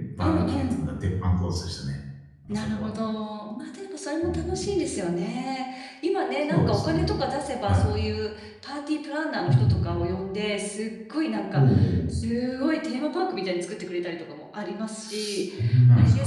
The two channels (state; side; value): identical; both; correlation 1.00